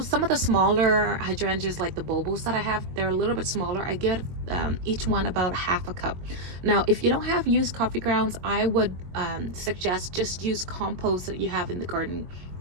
some of the smaller hydrangeas like the Bobos that I have, they're a little bit smaller. I give each one about half a cup. Now, if you don't have used coffee grounds, I would suggest just use compost that you have in the garden.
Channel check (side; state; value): left; late; 22 ms